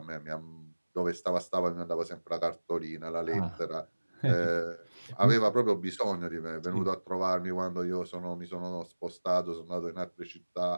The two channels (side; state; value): both; inverted; correlation -1.00